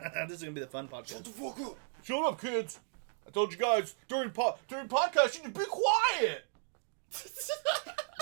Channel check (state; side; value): silent; left; digital silence